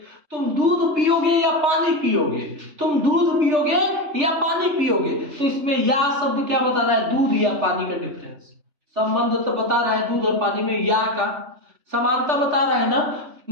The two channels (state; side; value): late; left; 3.4 ms